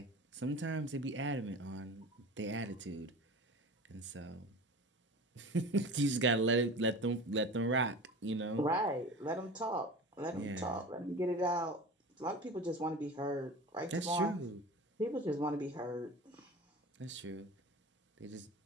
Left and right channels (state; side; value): normal; both; correlation 0.35